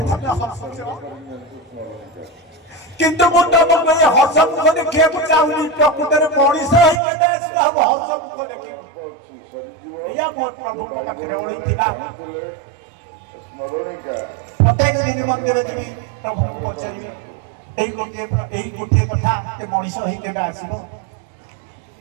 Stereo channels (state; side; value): drops out; left; at 7.0 s